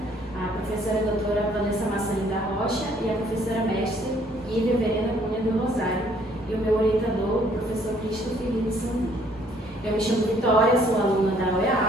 a professora doutora Vanessa Massarim da Rocha e a professora mestre Ivy Verena Cunha do Rosário, e o meu orientador, o professor Cristo Felipe Sandu. Eu me chamo Vitória, sou aluna da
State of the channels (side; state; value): both; normal; correlation 0.63